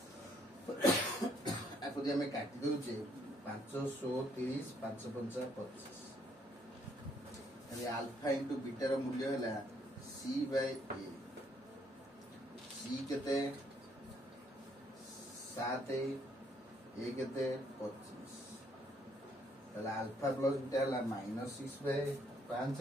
आको जे हमें काटी दोचे 530 5 5 25 ताले अल्फा इनटू बीटा रो मूल्य हला सी बाय ए सी केते 7 ये केते 25 ताले अल्फा प्लस बीटा हला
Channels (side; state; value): both; normal; correlation 0.68